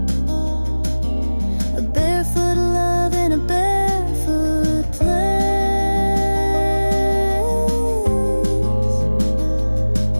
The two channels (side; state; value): both; inverted; correlation -1.00